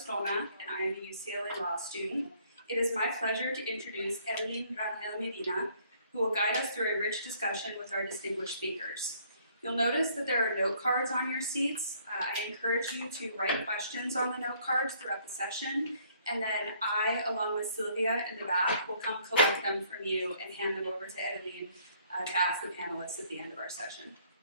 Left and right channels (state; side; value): inverted; both; correlation -0.62